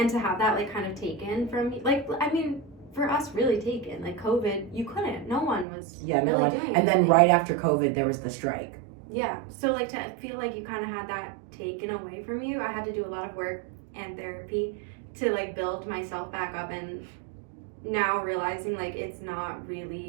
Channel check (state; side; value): drops out; left; at 5.7 s